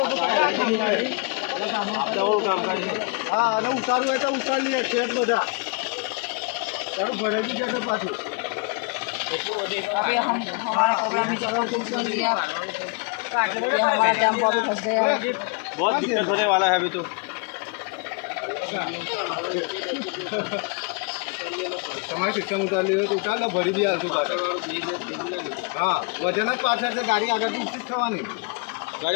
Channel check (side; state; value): right; quieter; 32.9 dB